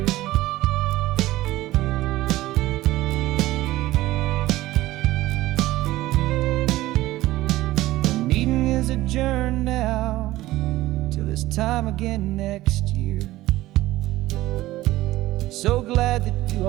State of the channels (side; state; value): left; quieter; 16.6 dB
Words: The meeting is adjourned now till this time again next year. So glad that you